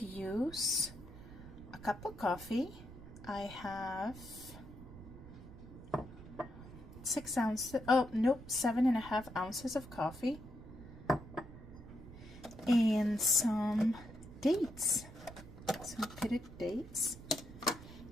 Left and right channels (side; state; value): right; noise; rumble, 15 dB below the sound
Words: use a cup of coffee. I have 7.5 ounces of coffee and some dates. Some pitted dates.